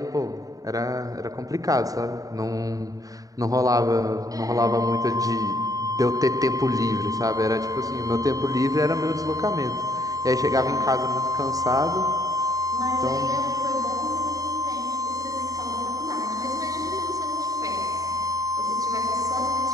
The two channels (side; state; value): left; late; 0.17 ms